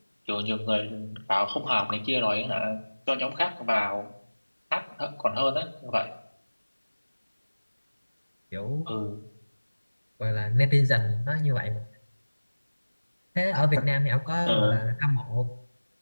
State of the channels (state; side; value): inverted; both; correlation -1.00